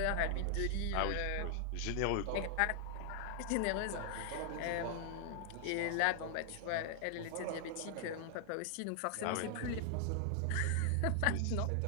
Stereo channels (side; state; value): both; different; correlation 0.00